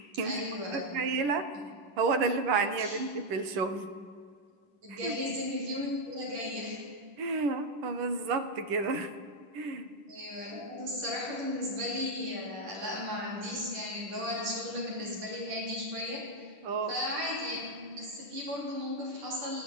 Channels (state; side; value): late; left; 10 ms